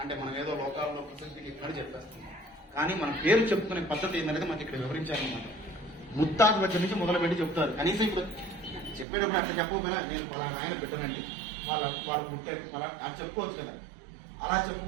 అంటే మనం ఏదో లోకాల్లో ప్రసిద్ధికి ఇక్కడ చెప్పేస్తాం. కానీ మన పేరు చెప్పుకునే పద్ధతి ఏంటనేది మనకి ఇక్కడ వివరించాలన్నమాట. ముత్తాత దగ్గర నుంచి మొదలుపెట్టి చెప్తారు. కనీసం ఇప్పుడు చెప్పేటప్పుడు అట్లా చెప్పకపోయినా నేను పలానా ఆయన బిడ్డనండి, వాళ్ళు పుట్టారు పలా అని చెప్పుకోవచ్చు కదా. అలా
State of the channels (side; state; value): left; drops out; at 9.1 s